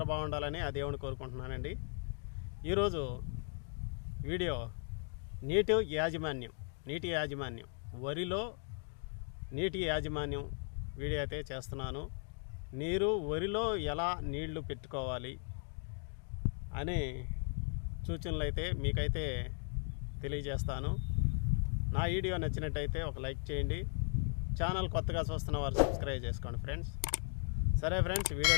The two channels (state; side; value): silent; right; 53 dB below the other